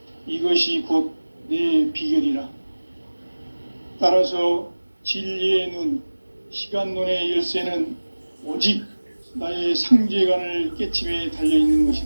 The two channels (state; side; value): inverted; both; correlation -1.00